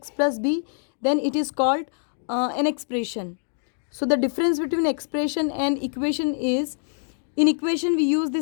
plus b, then it is called an expression. So the difference between expression and equation is, in equation we use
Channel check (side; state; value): right; silent; digital silence